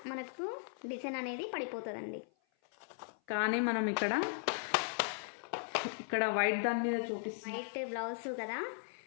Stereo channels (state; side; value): silent; right; 53 dB below the other